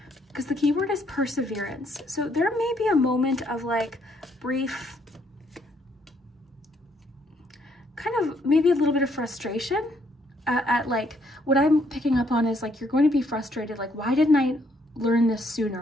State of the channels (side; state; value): both; normal; correlation 0.70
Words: because the keyword is perseverance. So there may be a moment of like brief, kind of maybe a little bit of frustration at like, what I'm picking up on is like, you're going to be frustrated. Like, why didn't I learn this